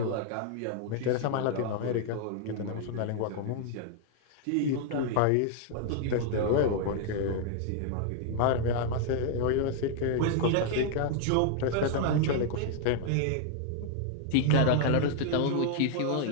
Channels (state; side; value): different; both; correlation 0.00